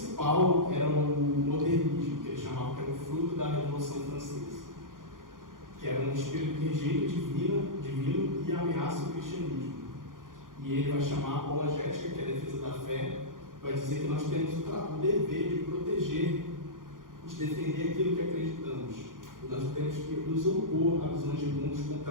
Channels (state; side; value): late; left; 0.90 ms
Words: era o modernismo, que ele chamava que era o fruto da Revolução Francesa, que era um espírito que rejeita divino e ameaça o cristianismo. E ele vai chamar a apologética, que é a defesa da fé, vai dizer que nós temos o dever de proteger, de defender aquilo que acreditamos. E nós temos que nos opor a visões de mundos